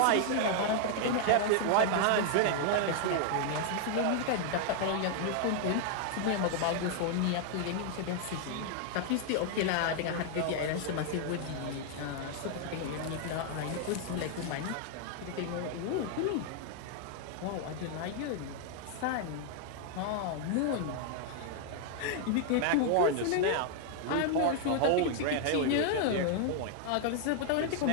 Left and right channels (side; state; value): both; different; correlation 0.00